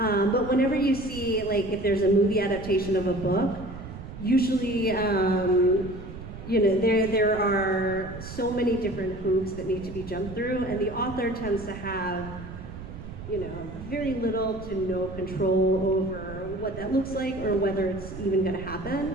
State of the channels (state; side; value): noise; right; rumble, 12 dB below the sound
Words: whenever you see, like, if there's a movie adaptation of a book, usually, you know, there are so many different hoops that need to be jumped through, and the author tends to have, you know, very little to no control over what that looks like or whether it's even going to